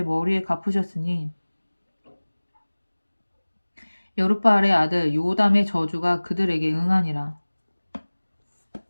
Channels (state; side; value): inverted; both; correlation -1.00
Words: 머리에 갚으셨으니 여룻바알의 아들 요담의 저주가 그들에게 응하니라.